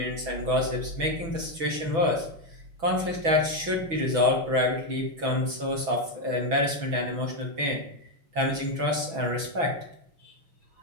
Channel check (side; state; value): left; late; 6.1 ms